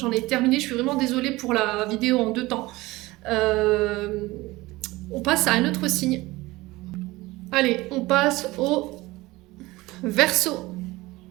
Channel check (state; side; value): quieter; left; 20.1 dB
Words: ai terminé. Je suis vraiment désolée pour la vidéo en 2 temps. On passe à un autre signe. Allez, on passe au Verseau.